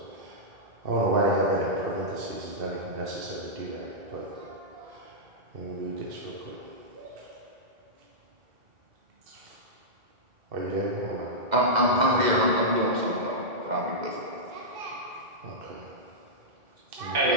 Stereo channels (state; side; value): late; left; 2.0 ms